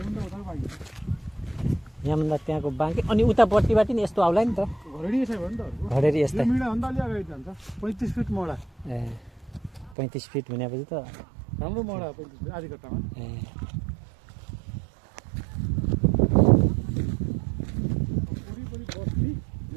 उता बाँकी यहाँभन्दा त्यहाँको बाँकी अनि उतापट्टिबाट नि यस्तो आउला नि त घरेडी यसै भयो नि त घडेरी यस्तै मिडा भन्दा अलि अगाडि जान्छ 35 फिट मोडा ए 35 फिट भनेपछि त राम्रो मोडा 35 फिट आधी कट्टामा ए वरिपरि बस्ती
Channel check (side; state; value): left; drops out; at 10.0 s